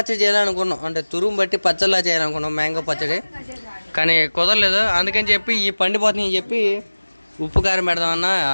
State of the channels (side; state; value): both; inverted; correlation -1.00